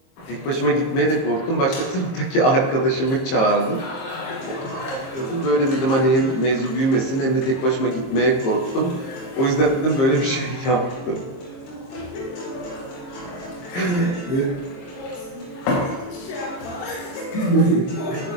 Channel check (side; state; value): right; late; 22 ms